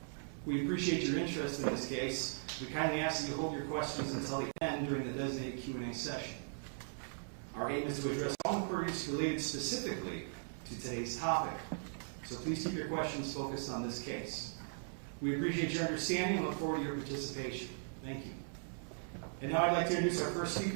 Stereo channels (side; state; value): left; silent; digital silence